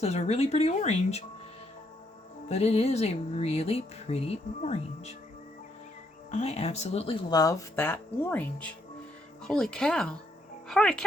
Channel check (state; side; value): normal; both; correlation 0.74